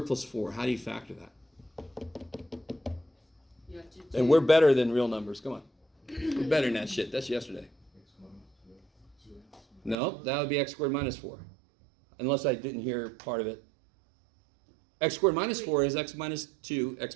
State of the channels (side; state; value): left; drops out; at 10.0 s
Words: plus 4. How do you factor that? You have to do, And we're better than real numbers. Come on. We're better than that shit. That's yesterday. No, that would be x squared minus 4. Unless I didn't hear part of it. X squared minus 4 is x minus 2, x